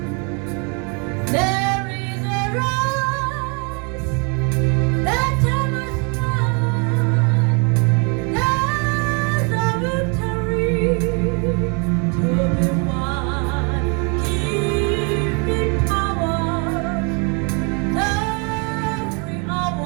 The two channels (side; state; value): left; quieter; 34.4 dB